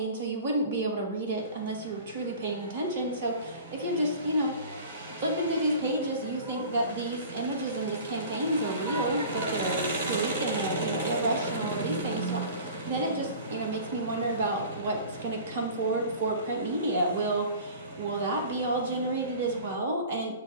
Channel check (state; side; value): inverted; both; correlation -0.41